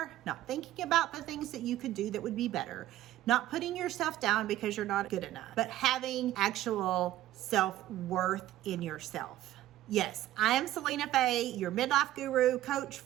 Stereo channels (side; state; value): left; quieter; 14.2 dB